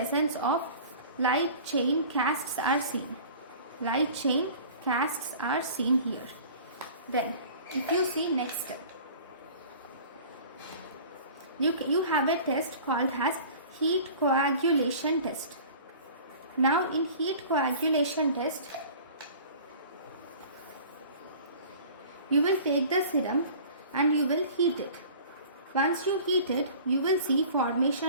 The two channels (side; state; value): both; inverted; correlation -0.44